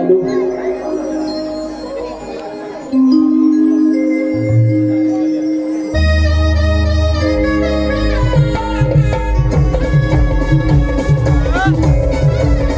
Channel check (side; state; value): both; identical; correlation 1.00